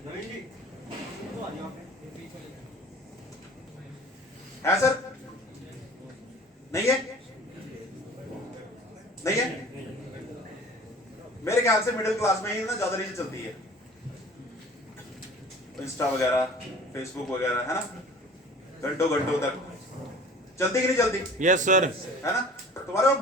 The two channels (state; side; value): normal; both; correlation 0.45